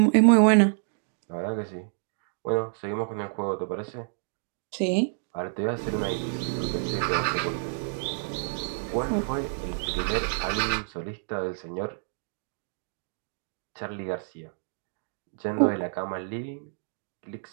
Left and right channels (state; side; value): silent; left; digital silence